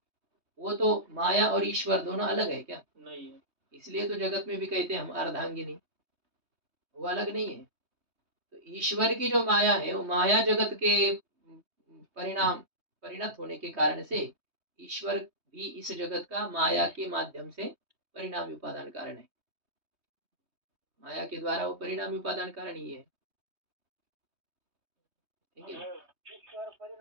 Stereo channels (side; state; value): left; late; 3.2 ms